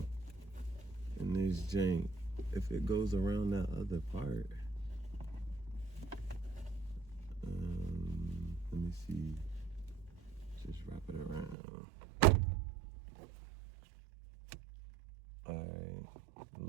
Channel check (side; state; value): left; drops out; at 11.6 s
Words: in this jank if it goes around that other part. Let me see. Just wrap it around. All right.